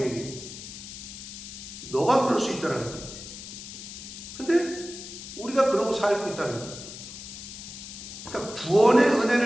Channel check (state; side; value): noise; left; hiss, 12 dB below the sound